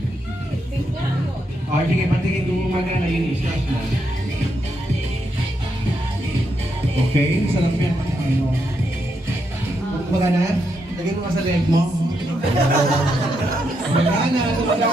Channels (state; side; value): normal; both; correlation 0.80